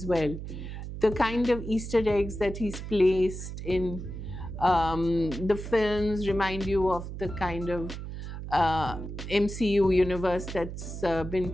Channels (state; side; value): noise; right; hum, 8 dB below the sound